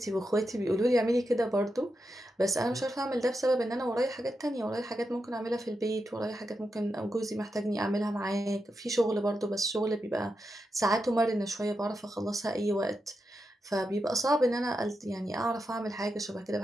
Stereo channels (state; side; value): normal; both; correlation 0.87